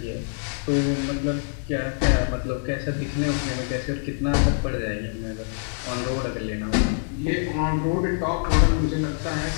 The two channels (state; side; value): silent; right; digital silence